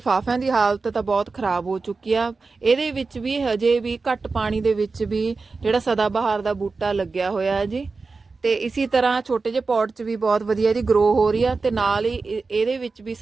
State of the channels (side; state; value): left; quieter; 4.1 dB